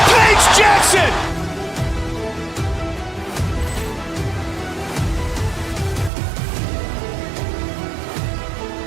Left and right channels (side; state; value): left; drops out; at 6.1 s